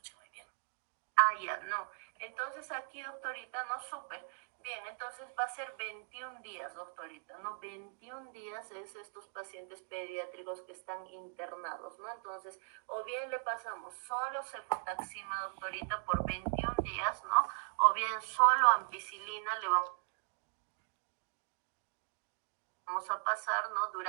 muy bien. Ah, ya, no. Entonces aquí, doctorita, no, súper. Bien, entonces va a ser 21 días, doctorita, ¿no? 21 días es estos pacientes pediátricos que están internados, ¿no? Entonces, o bien le pasamos solo cefotaxima, doctorita, por 21 días, ¿no? O bien solo ampicilina le vamos a pasar, ¿no?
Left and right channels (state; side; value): silent; left; 52 dB below the other